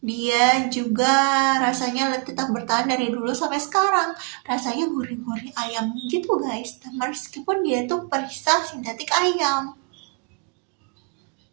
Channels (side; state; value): left; quieter; 34.4 dB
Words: dia juga rasanya tetap bertahan dari dulu sampai sekarang. Rasanya gurih-gurih ayam gitu guys, meskipun dia itu perisa sintetik ayam.